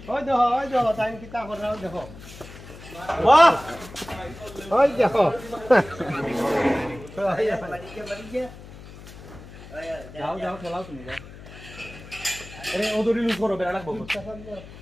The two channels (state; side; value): noise; left; hum, 17 dB below the sound